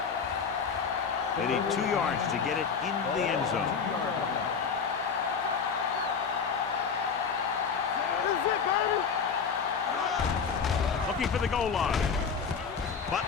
They need 2 yards to get it in the end zone. Looking for the goal line.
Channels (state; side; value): quieter; right; 6.0 dB